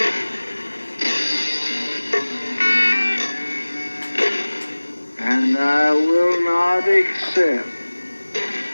And I will not accept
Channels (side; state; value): both; inverted; correlation -1.00